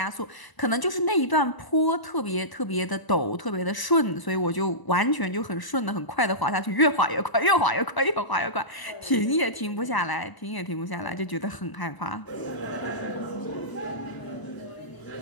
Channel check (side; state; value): right; late; 1.0 ms